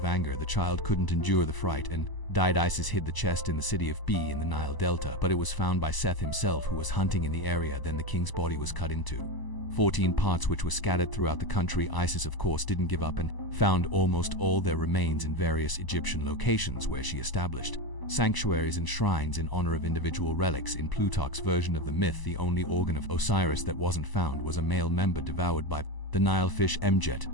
anger. The child couldn't endure the fright and died. Isis hid the chest in the city of B in the Nile Delta, but it was found by Seth himself, who was hunting in the area. Then the king's body was cut into 14 parts, which were scattered throughout the country. Isis, of course, didn't give up and found almost all their remains in various Egyptian locations, where she established sanctuaries and shrines in honor of individual relics. In Plutarch's version of the myth, the only organ of Osiris that wasn't found was a male member devoured by the Nile fish Mjet.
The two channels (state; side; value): late; right; 1.0 ms